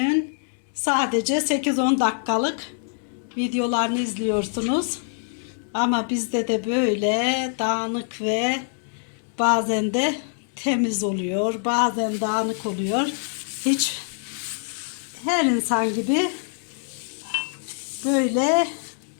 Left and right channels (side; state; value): right; silent; digital silence